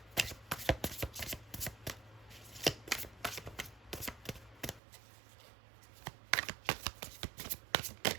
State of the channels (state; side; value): drops out; left; at 4.8 s